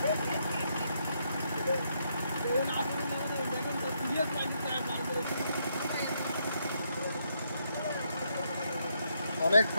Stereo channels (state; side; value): inverted; both; correlation -0.76